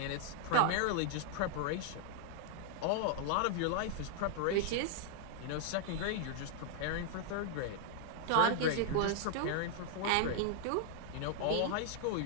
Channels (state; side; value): different; both; correlation -0.01